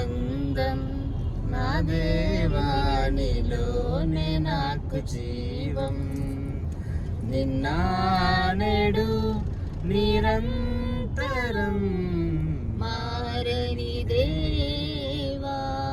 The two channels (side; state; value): both; identical; correlation 1.00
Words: నా దేవా, నీలోనే నాకు జీవం. నిన్న నేడు నిరంతరం మారని దేవా,